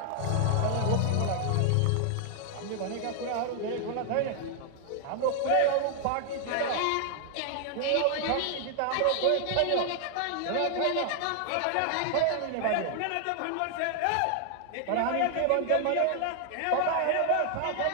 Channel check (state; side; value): different; both; correlation 0.00